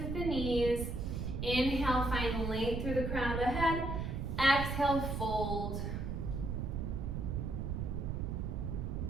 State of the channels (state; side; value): noise; right; rumble, 2 dB below the sound